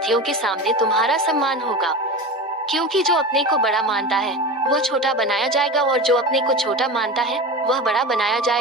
के सामने तुम्हारा सम्मान होगा। क्योंकि जो अपने को बड़ा मानता है वह छोटा बनाया जाएगा और जो अपने को छोटा मानता है वह बड़ा बनाया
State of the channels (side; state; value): both; normal; correlation 0.28